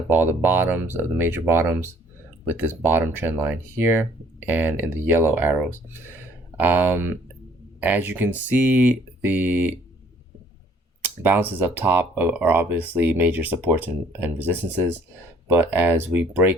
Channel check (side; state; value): both; normal; correlation 0.59